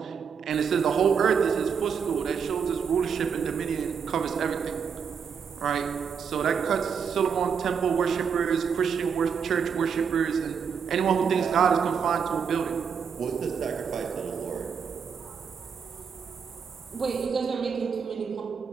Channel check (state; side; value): quieter; left; 6.6 dB